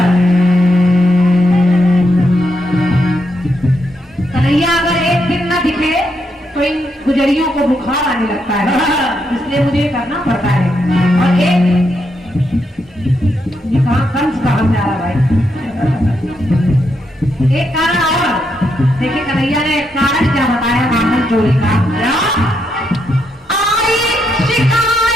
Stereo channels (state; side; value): normal; both; correlation 0.80